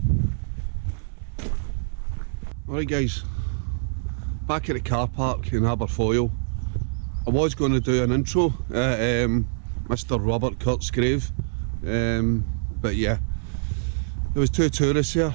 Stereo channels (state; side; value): silent; left; digital silence